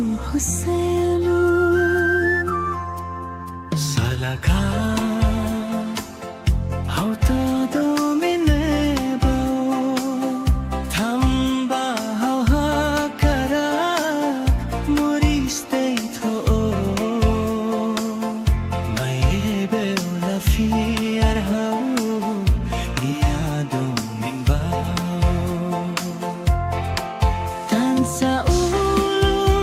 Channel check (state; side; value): identical; both; correlation 1.00